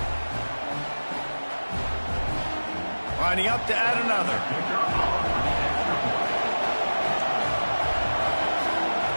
Lining up to add another.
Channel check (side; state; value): both; inverted; correlation -1.00